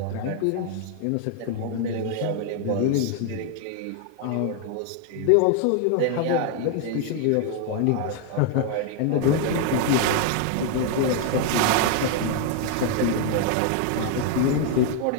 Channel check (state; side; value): different; both; correlation 0.00